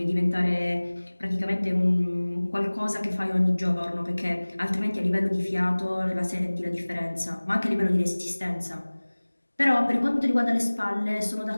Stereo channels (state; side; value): inverted; both; correlation -1.00